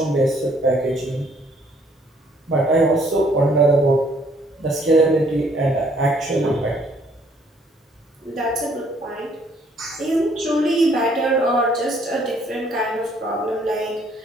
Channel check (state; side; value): normal; both; correlation 0.64